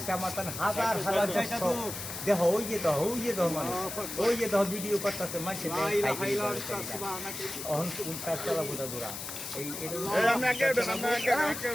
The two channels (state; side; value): noise; left; hiss, 7 dB below the sound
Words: আমার তান হাজার হাজার দর্শক দেখো ওই যে মানুষ ওই যে ভিডিও করতেছে মানুষ অহন কোনটা চালাবো দাদুরা এই